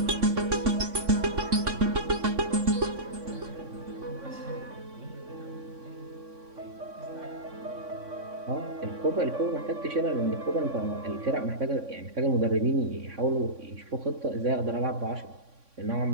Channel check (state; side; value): late; left; 3.6 ms